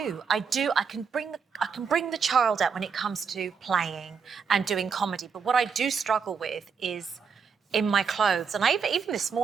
I can bring the child out when it comes to playing and doing comedy. But what I do struggle with is in my clothes. And even this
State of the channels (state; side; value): quieter; left; 6.1 dB